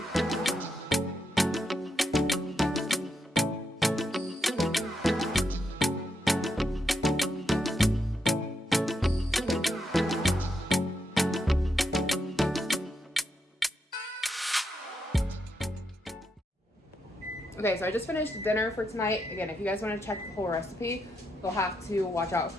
Okay, so I just finished dinner for tonight. Again, if you guys want to check the whole recipe, you'll have to watch out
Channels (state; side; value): normal; both; correlation 0.82